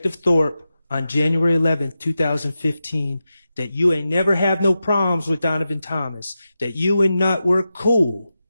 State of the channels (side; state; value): both; inverted; correlation -0.91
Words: Thorpe on January 11th, 2015, that you ain't never have no problems with Donovan Thomas, that you and Nut were cool,